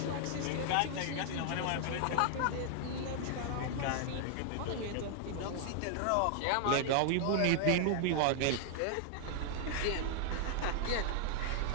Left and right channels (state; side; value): different; both; correlation 0.00